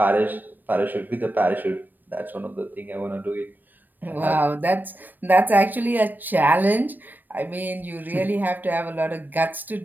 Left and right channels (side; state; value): left; late; 0.090 ms